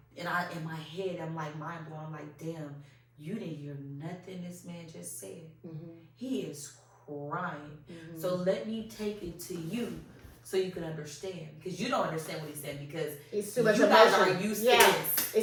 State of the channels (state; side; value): identical; both; correlation 1.00